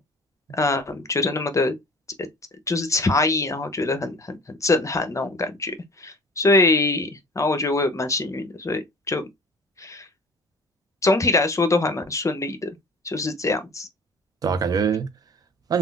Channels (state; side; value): normal; both; correlation 0.44